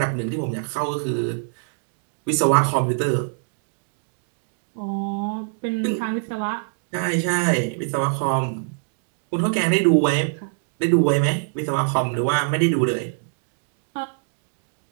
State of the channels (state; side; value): silent; left; digital silence